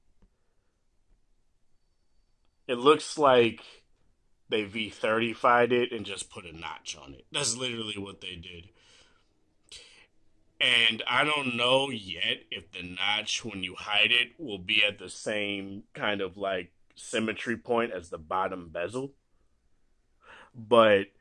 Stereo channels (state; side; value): identical; both; correlation 1.00